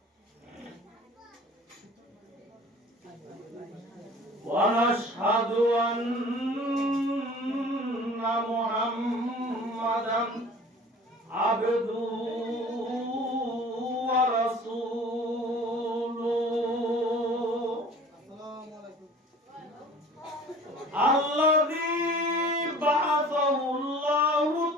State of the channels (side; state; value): both; normal; correlation 0.46